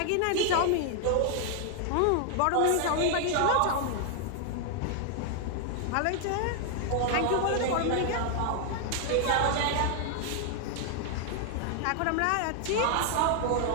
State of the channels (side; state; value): both; different; correlation 0.00